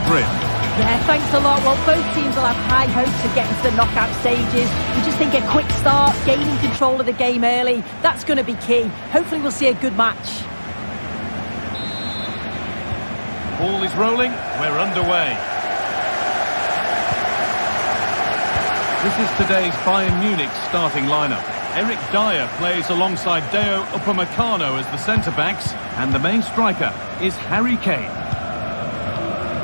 Yeah, thanks a lot. Well, both teams will have high hopes of getting to the knockout stages. We just think a quick start, gaining control of the game early, that's going to be key. Hopefully we'll see a good match. Ball is rolling, we're underway. This is today's Bayern Munich starting lineup. Eric Dyer plays alongside Deo Upamecano as the centre-backs, and the main striker is Harry Kane.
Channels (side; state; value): both; inverted; correlation -1.00